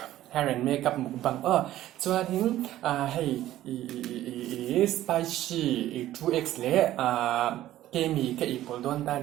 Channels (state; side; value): quieter; left; 13.9 dB